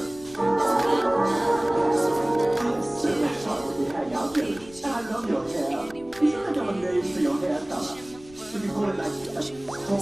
So much fun when we hang out together. I love your hair. You should think of a name for your hair color. You can call it like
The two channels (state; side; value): noise; left; rumble, 23 dB below the sound